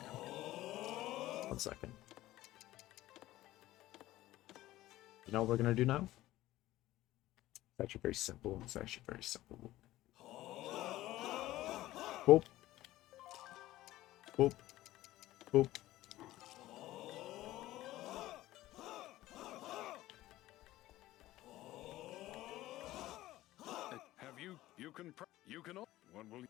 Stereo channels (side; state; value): right; quieter; 15.9 dB